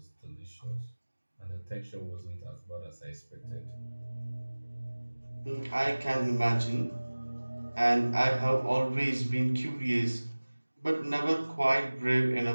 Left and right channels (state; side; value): inverted; both; correlation -1.00